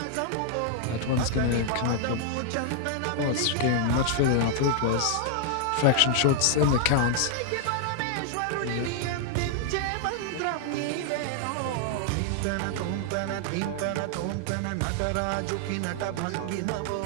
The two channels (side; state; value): both; different; correlation -0.01